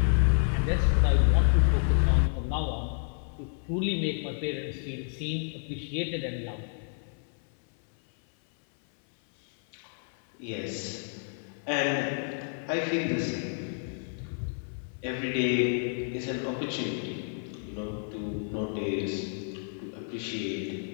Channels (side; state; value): right; silent; 57 dB below the other